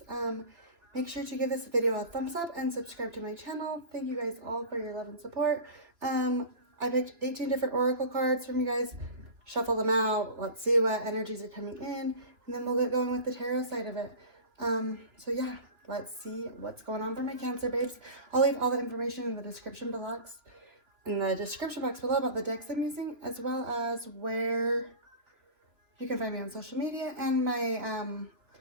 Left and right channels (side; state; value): left; late; 2.7 ms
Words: Make sure to give this video a thumbs up and subscribe to my channel. Thank you guys all for your love and support. I picked 18 different oracle cards from you guys. Shuffle them out. Let's see what energies are coming in, and then we'll get going with the tarot side of it. So yeah. Let's see what's going on for my Cancer babes. I'll leave all the information in the description box below about the decks I'm using, as well as where you can find me on social media and my